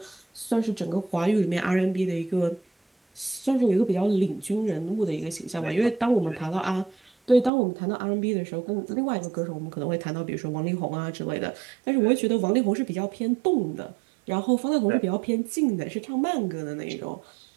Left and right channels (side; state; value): left; drops out; at 7.5 s